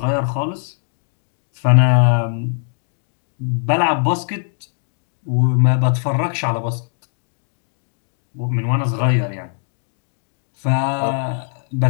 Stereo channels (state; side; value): silent; right; digital silence